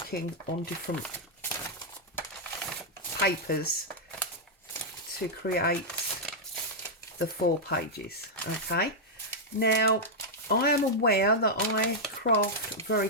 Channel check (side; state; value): both; normal; correlation -0.05